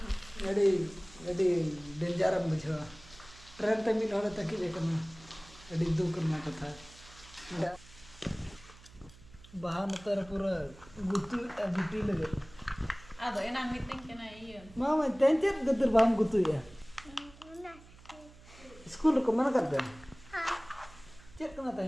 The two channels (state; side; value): noise; right; hum, 22 dB below the sound